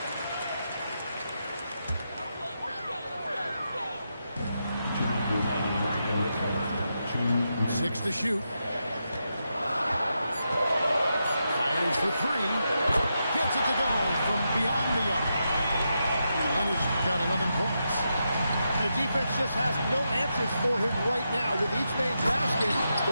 6 to shoot. Fires for 3. Gets it to go from beyond the arc. Leonard's got 11 points. The defense just has no answers for him right now. With each man's basket,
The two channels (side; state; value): both; inverted; correlation -0.85